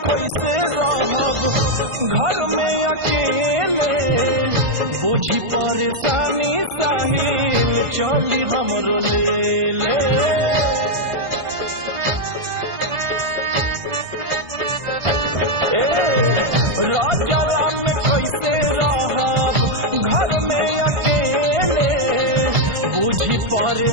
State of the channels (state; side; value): late; left; 1.5 ms